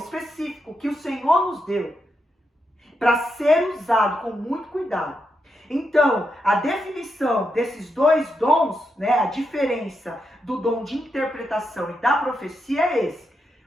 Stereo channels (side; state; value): both; normal; correlation 0.84